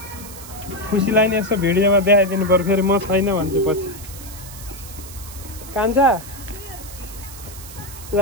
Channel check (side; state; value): right; noise; hiss, 15 dB below the sound